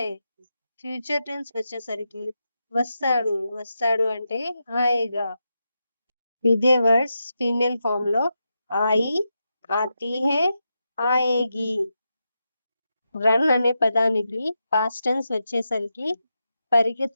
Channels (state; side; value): inverted; both; correlation -0.87